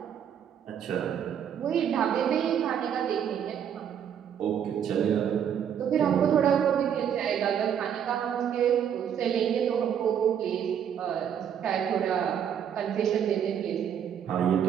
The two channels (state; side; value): quieter; left; 8.7 dB